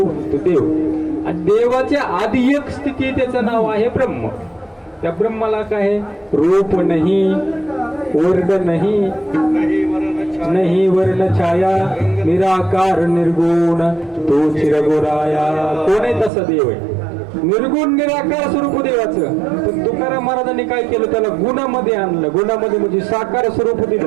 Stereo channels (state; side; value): drops out; left; at 16.3 s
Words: देव. आणि देवाच्या आधी एक स्थिती त्याचं नाव आहे ब्रह्म. त्या ब्रह्माला काय रूप नाही, वर्ण नाही वर्ण छाया, निराकार निर्गुण तो चिरगोराया. कोण आहे तसा देव आहे, निर्गुण निराकार स्वरूप देवाचं. पण तुकाराम महाराजांनी काय केलं, त्याला गुणामध्ये आणलं. गुणामध्ये म्हणजे साकार स्वरूप